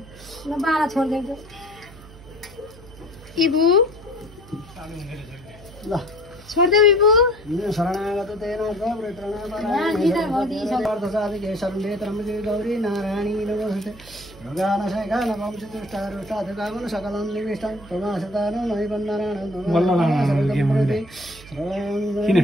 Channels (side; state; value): right; noise; hum, 20 dB below the sound